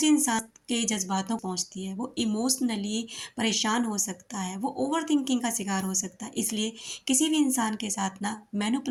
इंसान के जज्बातों को पहुँचती है, वो इमोशनली परेशान हो सकता है, वो ओवरथिंकिंग का शिकार हो सकता है। इसलिए किसी भी इंसान के साथ ना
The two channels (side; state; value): both; identical; correlation 1.00